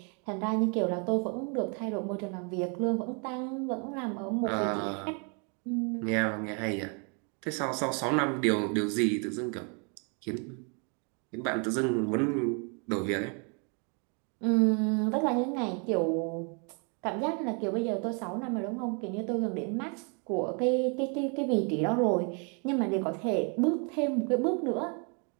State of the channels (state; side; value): quieter; left; 36.9 dB